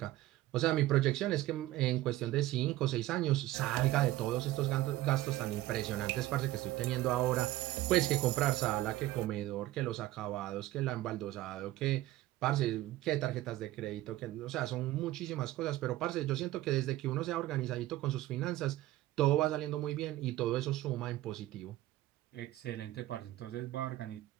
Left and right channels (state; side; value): quieter; left; 15.9 dB